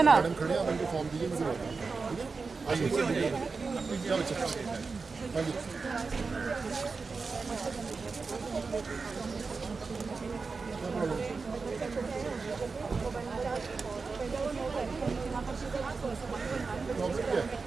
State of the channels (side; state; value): left; quieter; 4.5 dB